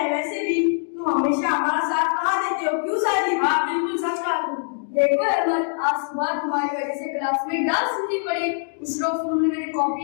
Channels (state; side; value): silent; right; 63 dB below the other